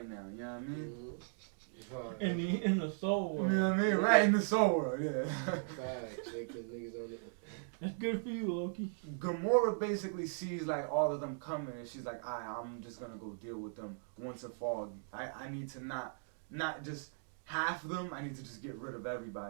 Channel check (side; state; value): left; silent; digital silence